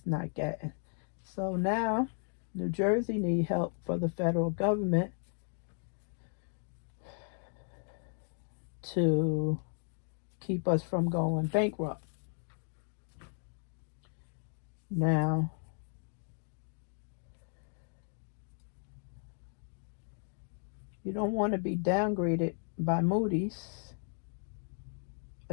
not getting. So now New Jersey need help for the federal government to keep us from going bankrupt. Now, you don't want to be downgraded by Moody's.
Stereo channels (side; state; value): right; silent; 54 dB below the other